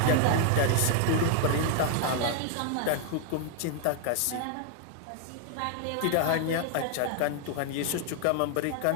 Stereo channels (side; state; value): both; different; correlation 0.00